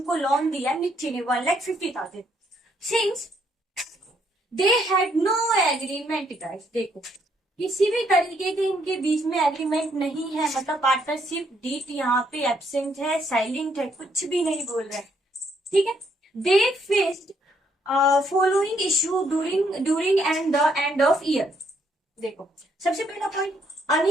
को लोन दिया मिथि ने 1,50,000। Since they had no agreement guys, देखो किसी भी तरीके के इनके बीच में एग्रीमेंट नहीं है, मतलब पार्टनरशिप डीड यहाँ पे एब्सेंट है, साइलेंट है, कुछ भी नहीं बोल रहे। ठीक है। They faced following issue during and the end of year. देखो सबसे पहला point,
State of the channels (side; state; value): both; normal; correlation 0.71